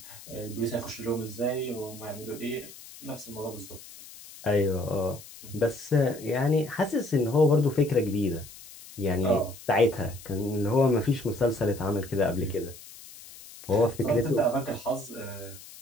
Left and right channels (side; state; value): left; noise; hiss, 17 dB below the sound